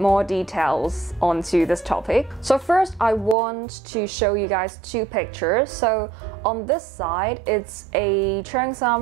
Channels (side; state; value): left; drops out; at 3.4 s